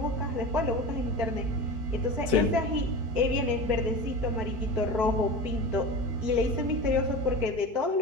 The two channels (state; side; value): late; left; 4.6 ms